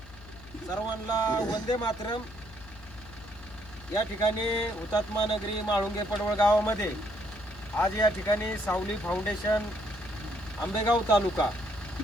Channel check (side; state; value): left; noise; hum, 20 dB below the sound